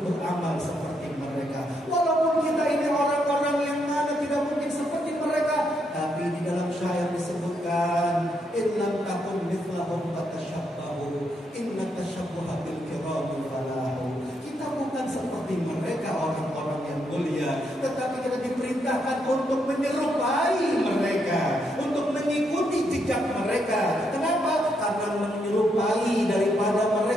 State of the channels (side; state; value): both; normal; correlation 0.78